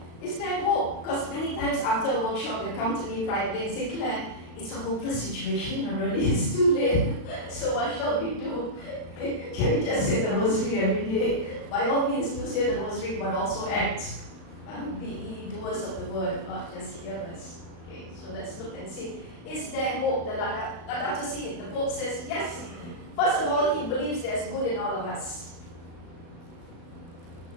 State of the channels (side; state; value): right; late; 36 ms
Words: is there hope? Because many times after a workshop, they come to me privately and say, Claire, it's a hopeless situation, and really it's too late. So what shall we do? Can we just say the rosary every day? By all means, do say the rosary, but also act. Be ye doers of the word, not just hearers. Okay, so let's look and see. Is there hope? The Laudato Si, the Pope says, yes. First of all, he believes there's good in all of us.